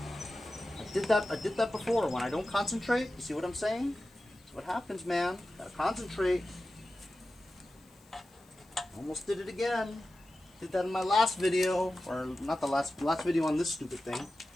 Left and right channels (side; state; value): left; noise; hiss, 30 dB below the sound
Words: I did that before. When I don't concentrate, you see what I'm saying? That's what happens, man. Gotta concentrate. Almost did it again. Did that in my last video, or not the last video on this stupid thing.